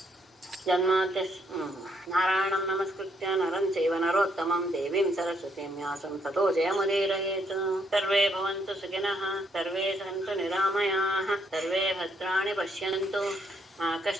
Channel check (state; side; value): normal; both; correlation 0.72